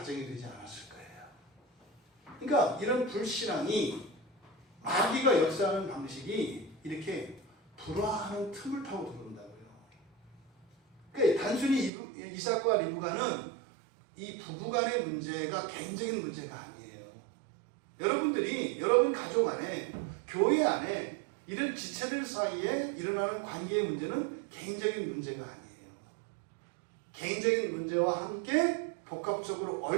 되지 않았을 거예요. 그러니까 이런 불신앙이 마귀가 역사하는 방식이 이렇게 불화하는 틈을 타고 들어온다고요. 그러니까 단순히 이삭과 리브가는 이 부부간의 문제가 개인적인 문제가 아니에요. 여러분들이 여러분 가족 안에 교회 안에 이런 지체들 사이에 일어나는 관계의 문제는 개인적인 문제가 아니에요. 개인적인 문제와 함께 복합적으로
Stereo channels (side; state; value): left; drops out; at 11.9 s